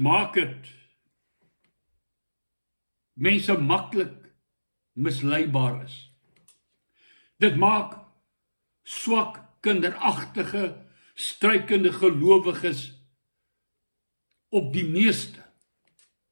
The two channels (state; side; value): inverted; both; correlation -1.00